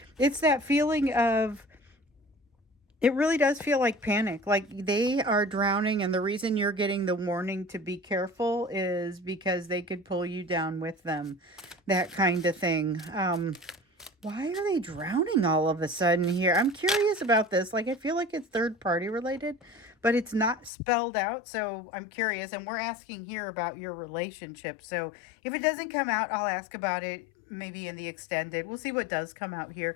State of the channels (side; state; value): right; drops out; at 20.7 s